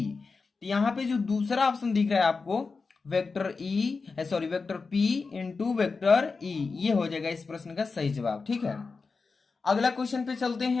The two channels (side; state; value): right; quieter; 4.4 dB